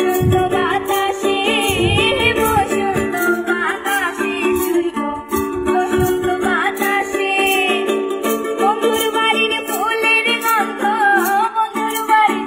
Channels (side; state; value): both; identical; correlation 1.00